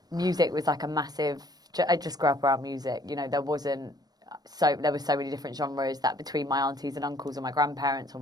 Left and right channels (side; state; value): left; late; 0.19 ms